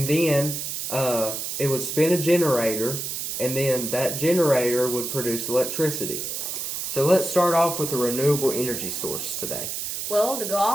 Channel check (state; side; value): noise; right; hiss, 4 dB below the sound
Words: then it would spin a generator, and then that generator would produce electricity. So let's start off with a renewable energy source today. Well, to go